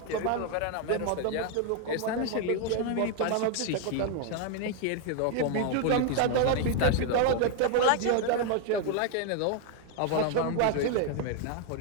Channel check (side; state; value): both; different; correlation 0.00